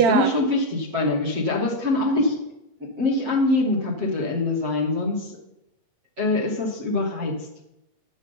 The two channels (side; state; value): left; late; 7.7 ms